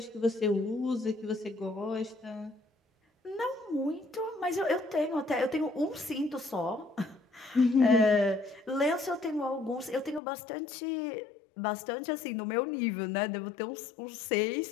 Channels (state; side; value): drops out; right; at 10.2 s